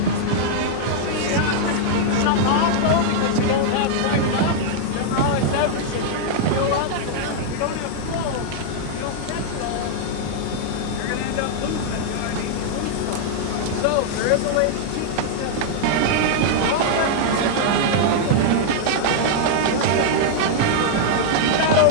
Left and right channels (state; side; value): different; both; correlation -0.01